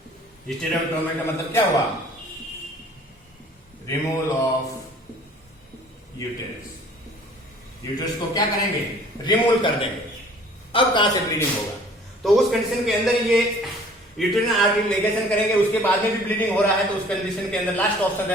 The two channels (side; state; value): both; normal; correlation 0.52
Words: हिस्टेरेक्टोमी का मतलब क्या हुआ, रिमूवल ऑफ यूटरस को क्या करेंगे, रिमूव कर देंगे. अब कहां से ब्लीडिंग होगा, तो उस कंडीशन के अंदर ये यूटेराइन आर्टरी लिगेशन करेंगे. उसके बाद में भी ब्लीडिंग हो रहा है तो उस कंडीशन के अंदर लास्ट ऑप्शन